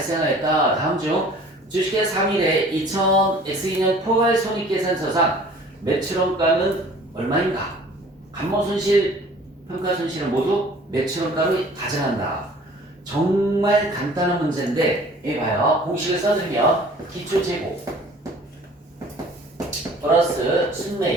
다음 중 주식회 3일에 2000X2년 포괄손익계산서상 매출원가는 얼마인가? 감모손실, 평가손실은 모두 매출원가를 가정한다. 정말 간단한 문제인데 여기 봐요. 공식을 써주면 기초재고 플러스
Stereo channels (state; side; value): normal; both; correlation 0.49